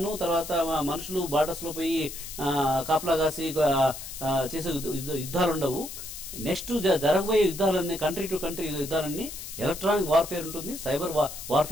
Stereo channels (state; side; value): noise; left; hiss, 10 dB below the sound